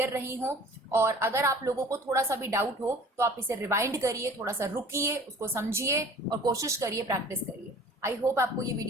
रही हो, और अगर आप लोगों को थोड़ा सा भी डाउट हो तो आप इसे रिवाइंड करिए, थोड़ा सा रुकिए, उसको समझिए और कोशिश करिए, प्रैक्टिस करिए। आई होप आपको ये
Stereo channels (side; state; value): both; normal; correlation 0.47